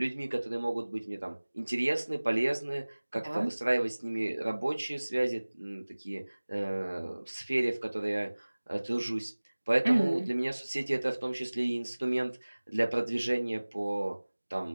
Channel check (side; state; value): both; inverted; correlation -1.00